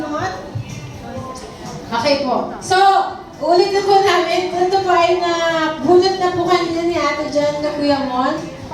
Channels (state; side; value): identical; both; correlation 1.00